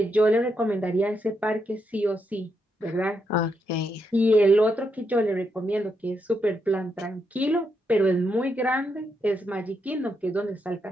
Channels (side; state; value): both; normal; correlation 0.80